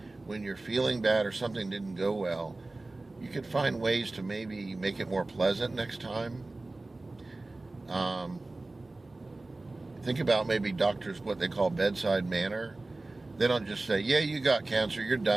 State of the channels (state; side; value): quieter; left; 3.0 dB